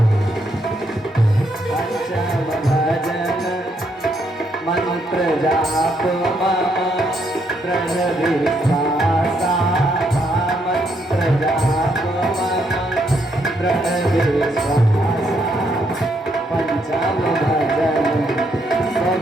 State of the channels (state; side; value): normal; both; correlation 0.74